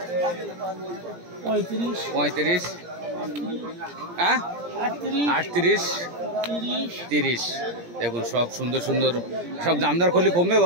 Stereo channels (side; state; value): left; late; 17 ms